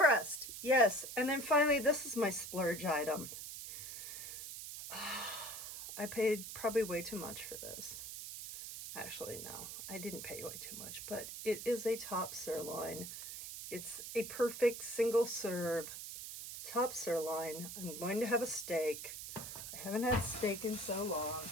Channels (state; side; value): noise; right; hiss, 9 dB below the sound